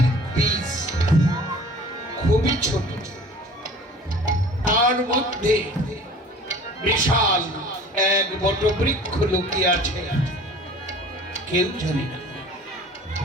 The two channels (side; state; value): both; normal; correlation 0.46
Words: বীজ খুবই ছোট, তার মধ্যে বিশাল এক বটবৃক্ষ লুকিয়ে আছে, কেউ জানে না।